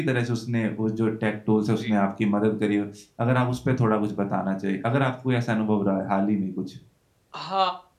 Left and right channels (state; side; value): identical; both; correlation 1.00